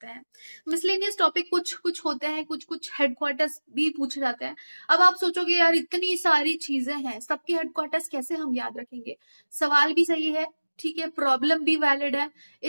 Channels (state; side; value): inverted; both; correlation -1.00